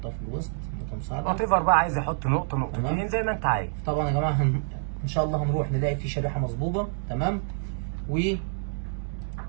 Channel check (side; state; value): left; silent; digital silence